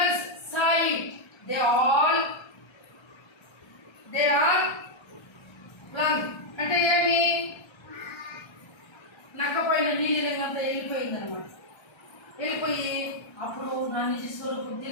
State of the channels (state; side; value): late; right; 1.3 ms